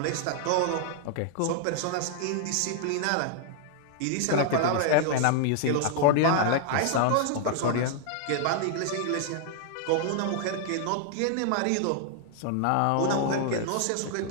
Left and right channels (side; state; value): both; different; correlation -0.01